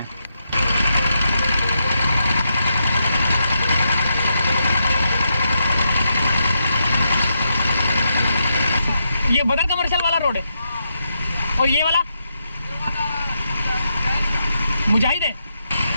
ये बदर कमर्शियल वाला रोड है और ये वाला मुजाहिद है।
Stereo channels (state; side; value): inverted; both; correlation -0.83